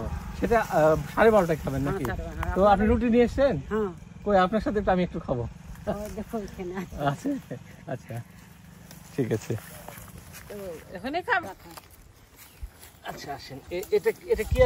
সেটা 12:30টায় খাবেন নাকি? হ্যাঁ, তো আপনি রুটি নিয়ে এসছেন? হ্যাঁ, কই, আপনার সাথে তো আমি একটু খাবো। ওই দেখো এখানে আছে। আছে? আচ্ছা, ঠিক আছে। তো এখানে খাবো। আচ্ছা, আসেন। এটা এটা কি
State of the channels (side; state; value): both; identical; correlation 1.00